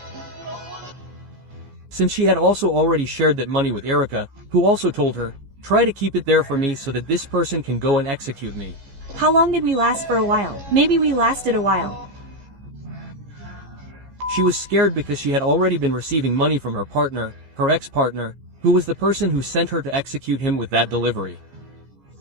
Since she had also already shared that money with Erika, who also told her, try to keep it there for me so that this person can go and execute me. How long did we last for a while? Maybe we lasted a while. She was scared because she had already been receiving money from her partner, her ex-partner, who was the person who sent her to execute him with that delivery.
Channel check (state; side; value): late; left; 15 ms